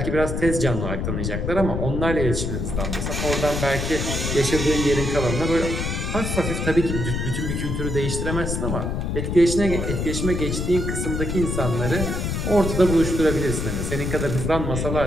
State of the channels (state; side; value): noise; left; rumble, 2 dB below the sound